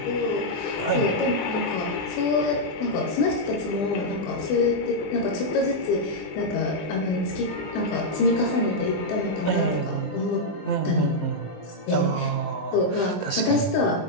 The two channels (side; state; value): right; late; 20 ms